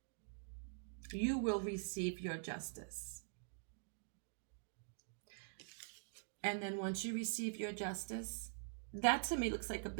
You will receive your justice. And then once you receive your justice, that to me looks like a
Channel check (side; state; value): left; silent; digital silence